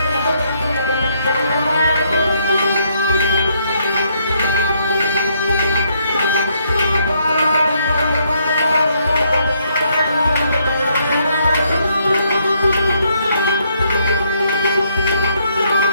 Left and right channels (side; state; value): both; inverted; correlation -0.72